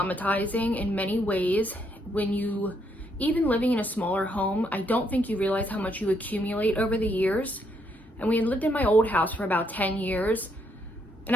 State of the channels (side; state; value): both; normal; correlation 0.74